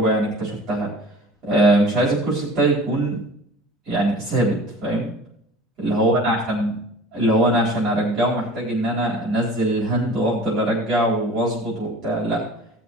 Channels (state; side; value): normal; both; correlation 0.43